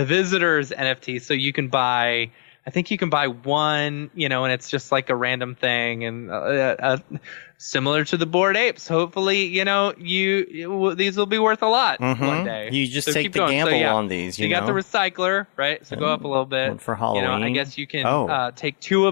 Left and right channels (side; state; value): right; silent; digital silence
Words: visitors NFT. So you can buy. I think you can buy one, and it's just like a random thing, and similar to the Bored Apes. Hopefully, these will be worth a lot one day. You just take the gamble on these. You got the recycler, right? So go up a little bit. One for Halloween. I guess you can take 2